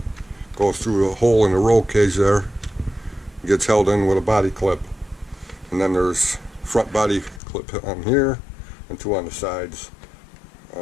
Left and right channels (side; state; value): right; drops out; at 7.4 s